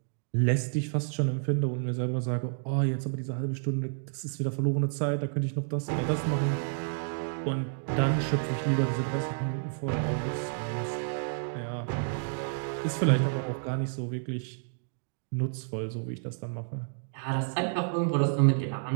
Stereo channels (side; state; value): left; silent; digital silence